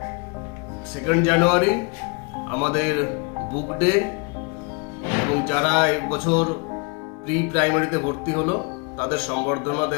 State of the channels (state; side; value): quieter; right; 32.7 dB